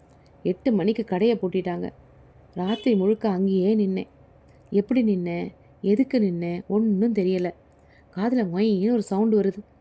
8 மணிக்கு கடையை பூட்டிட்டாங்க. ராத்திரி முழுக்க அங்கேயே நின்னேன். எப்படி நின்னேன், எதுக்கு நின்னேன் ஒன்றும் தெரியலை. காதில் மொயின்னு ஒரு சவுண்டு வருது.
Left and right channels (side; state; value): both; identical; correlation 1.00